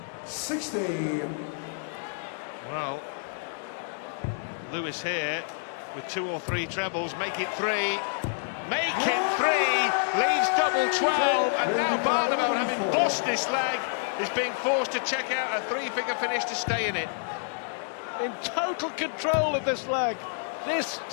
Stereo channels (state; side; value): silent; right; digital silence